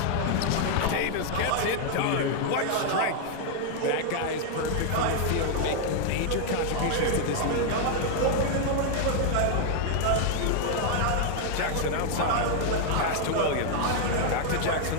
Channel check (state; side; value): different; both; correlation 0.00